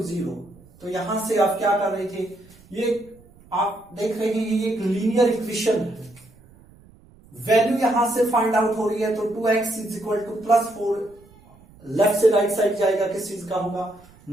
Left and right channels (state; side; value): noise; right; rumble, 26 dB below the sound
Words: 0। तो यहां से आप क्या कर रहे थे, ये आप देख रहे हैं ये एक लीनियर इक्वेशन है। वैल्यू यहां से फाइंड आउट हो रही है, तो 2x = +4 लेफ्ट से राइट साइड जाएगा, किस चीज का होगा